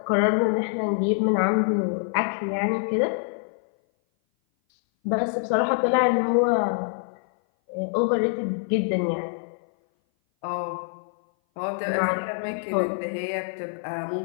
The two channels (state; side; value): silent; right; 58 dB below the other